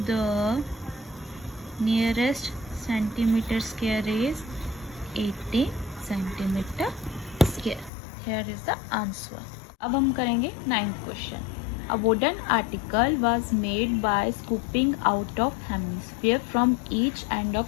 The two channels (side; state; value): right; drops out; at 7.9 s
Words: nearest centimetre square is 80 centimetre square. Here is the answer. अब हम करेंगे 9th question. A wooden article was made by scooping out of hemisphere from each end of